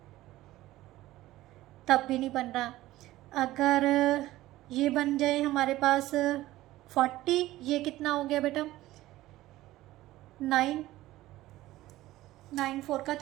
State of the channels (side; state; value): left; quieter; 16.3 dB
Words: तब भी नहीं बन रहा। अगर ये बन जाए हमारे पास 40, ये कितना हो गया बेटा 9 4 का